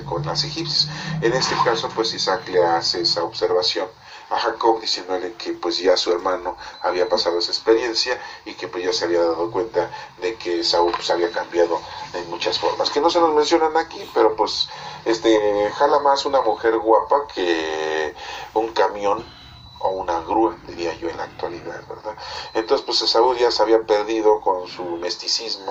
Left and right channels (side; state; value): both; identical; correlation 1.00